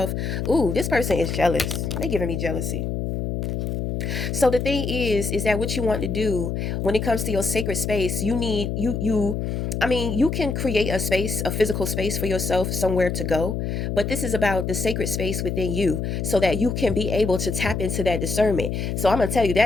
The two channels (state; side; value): noise; left; hum, 2 dB below the sound